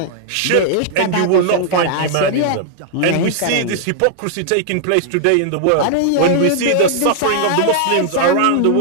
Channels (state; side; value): different; both; correlation -0.01